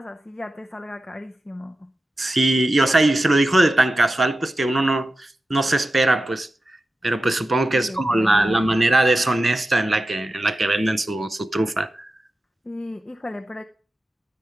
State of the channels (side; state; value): both; normal; correlation 0.92